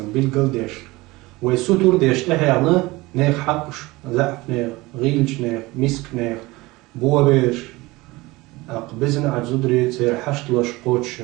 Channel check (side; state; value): left; quieter; 21.3 dB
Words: بالقل ديش ويسوتور ديش تحيانا نيخ حقش زعف نيخ غيلش نيخ مسك نيخ بوابيش أقبزن عجزودري تسير حشت لش قوتش